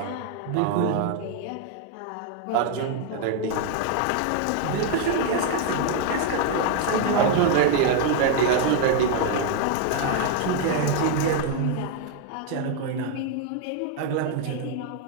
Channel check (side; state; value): both; different; correlation 0.00